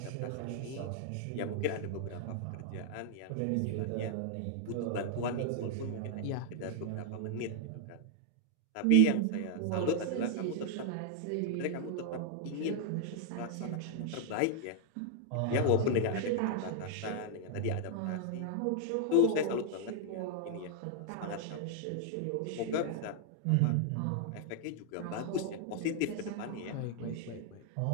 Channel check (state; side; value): different; both; correlation -0.01